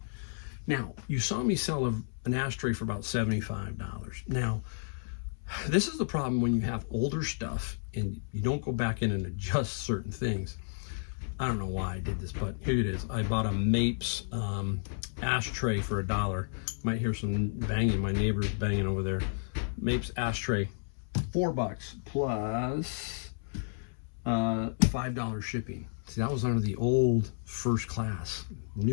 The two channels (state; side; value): silent; right; 57 dB below the other